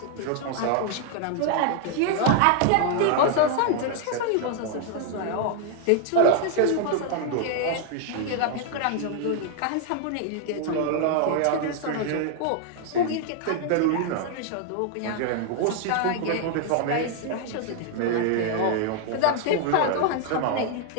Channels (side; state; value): both; different; correlation 0.00